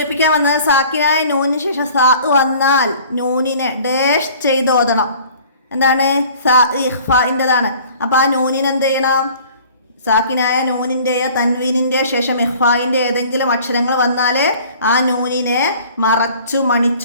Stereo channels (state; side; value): inverted; both; correlation -0.49